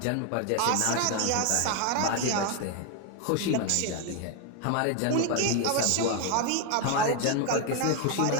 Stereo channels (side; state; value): both; different; correlation 0.01